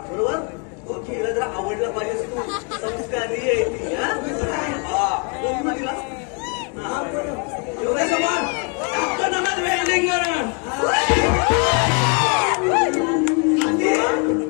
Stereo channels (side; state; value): right; quieter; 36.7 dB